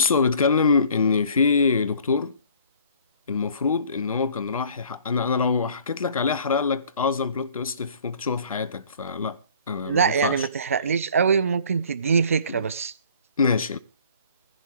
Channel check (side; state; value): both; inverted; correlation -0.53